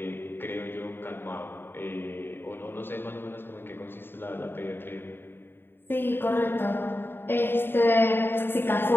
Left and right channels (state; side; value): late; right; 0.10 ms